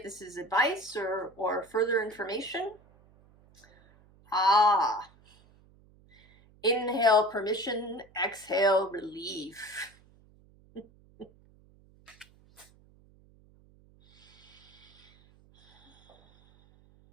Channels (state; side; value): noise; right; hum, 28 dB below the sound